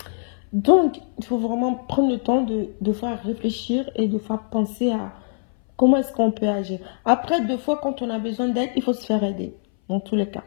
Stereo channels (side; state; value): right; silent; 60 dB below the other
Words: Donc, il faut vraiment prendre le temps de fois réfléchir et de fois penser à comment est-ce qu'on peut agir. Après, deux fois, quand on a besoin d'aide, il faut se faire aider, dans tous les cas.